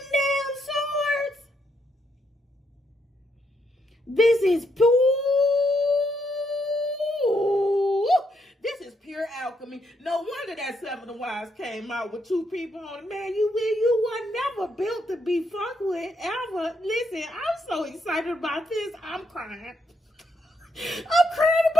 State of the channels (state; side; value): normal; both; correlation 0.77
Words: damn swords. This is Pooh. This is pure alchemy. No wonder that 7 of Wands came out with 2 people on it. Man, you were never built to be fucked with, ever. Listen, I'm so excited about this. I'm crying. I'm crying